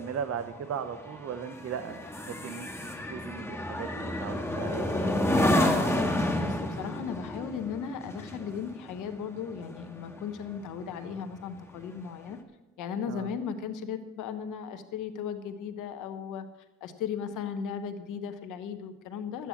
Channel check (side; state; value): both; normal; correlation 0.57